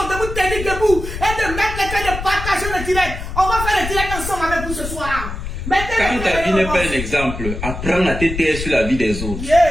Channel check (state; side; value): noise; left; rumble, 7 dB below the sound